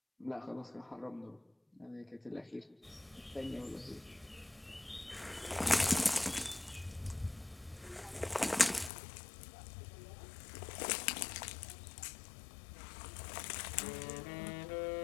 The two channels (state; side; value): drops out; right; at 8.9 s